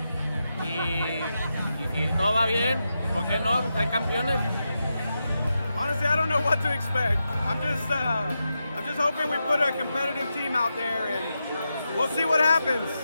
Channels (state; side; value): inverted; both; correlation -0.88